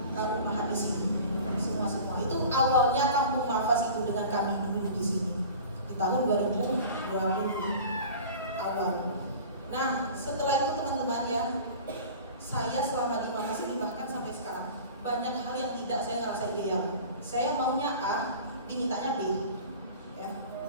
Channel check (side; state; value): both; inverted; correlation -0.40